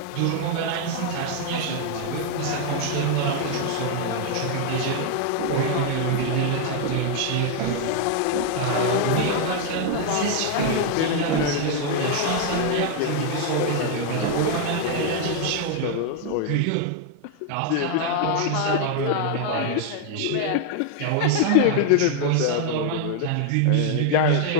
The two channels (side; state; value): both; different; correlation 0.00